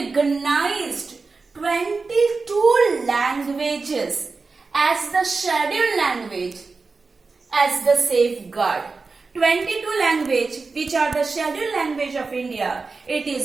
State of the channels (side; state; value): left; quieter; 4.2 dB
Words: 22 languages as the scheduled language as the safeguard. 22 language which are the scheduled language of India, it